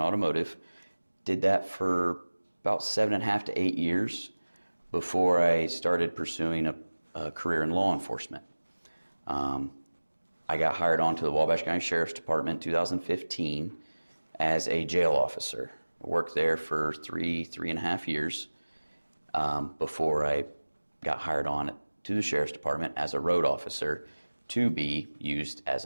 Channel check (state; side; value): inverted; both; correlation -1.00